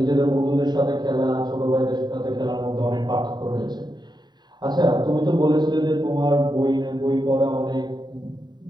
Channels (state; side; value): late; left; 0.21 ms